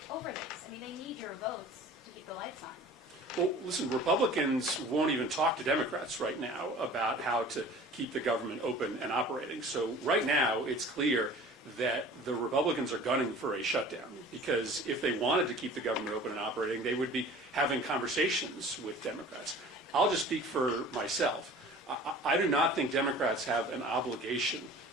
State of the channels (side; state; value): both; normal; correlation 0.44